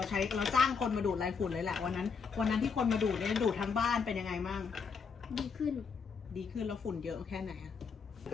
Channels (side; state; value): right; quieter; 5.6 dB